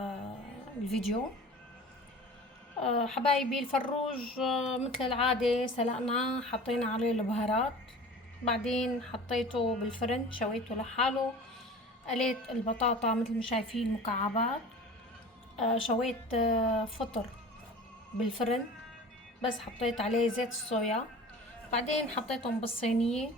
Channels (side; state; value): both; normal; correlation 0.40